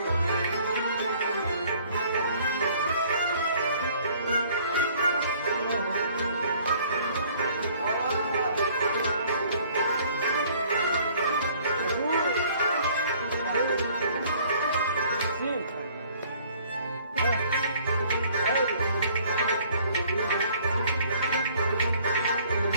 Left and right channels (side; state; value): both; inverted; correlation -0.57